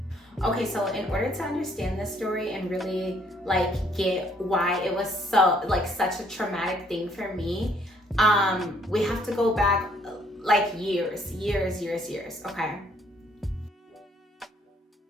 Okay, so in order to understand this story and really get why it was so such a traumatic thing for me, we have to go back years, okay?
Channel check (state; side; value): normal; both; correlation 0.65